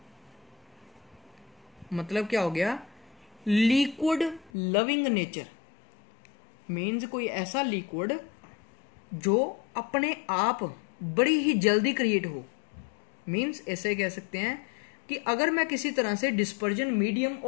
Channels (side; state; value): right; drops out; at 4.5 s